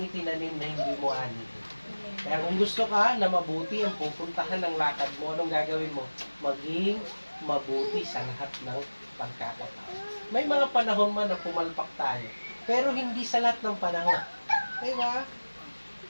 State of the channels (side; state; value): both; inverted; correlation -1.00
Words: na hindi mo ani. Kaya kung gusto ka na mabuti ang pupuntahan ng lakad mo, anong gagawin mo? Maging mabuti sa lahat ng pagkakataon. May mga panahon man na pumalpak tayo, pero hindi sa lahat ng panahon. Diba?